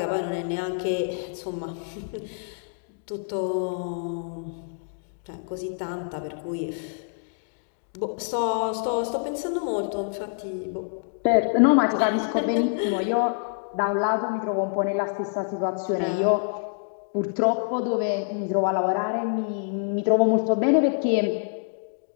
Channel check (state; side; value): silent; right; digital silence